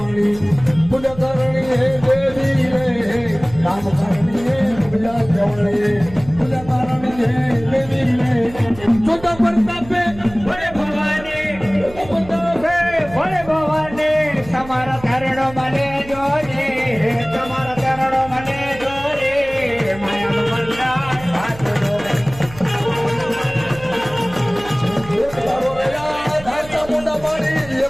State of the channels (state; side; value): noise; right; hum, 17 dB below the sound